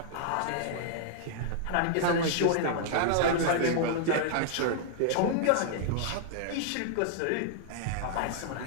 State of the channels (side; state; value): both; different; correlation -0.01